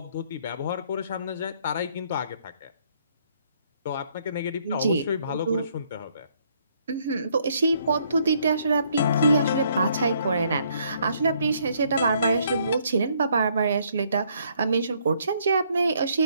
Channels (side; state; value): both; inverted; correlation -0.68